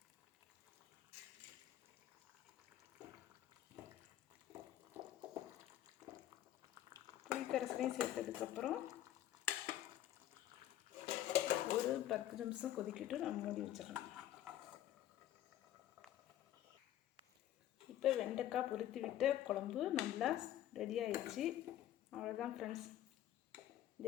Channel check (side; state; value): right; quieter; 12.7 dB